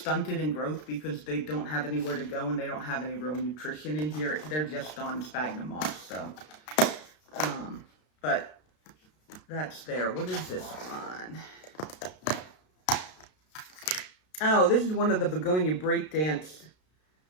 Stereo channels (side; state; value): right; late; 33 ms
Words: in growth because they don't have anywhere to go and they don't have any real nutrition in here. They're just on sphagnum moss, so. But that's there. What is this one? Oh, this is one of the begonia breakdance